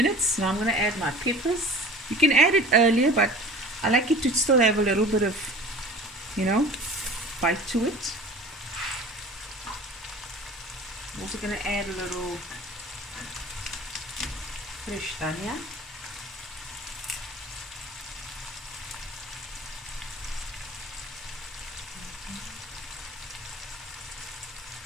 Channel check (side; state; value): both; normal; correlation 0.41